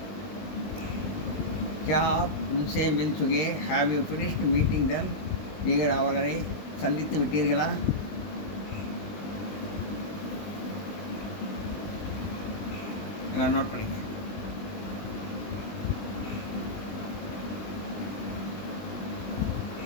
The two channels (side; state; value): right; late; 20 ms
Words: क्या आप उनसे मिल चुके have you finished meeting them? நீங்கள் அவர்களை சந்தித்து விட்டீர்களா? எல்லாம் நோட் பண்ணிக்க.